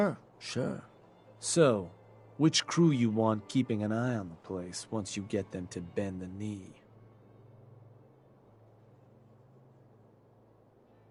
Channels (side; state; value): both; identical; correlation 1.00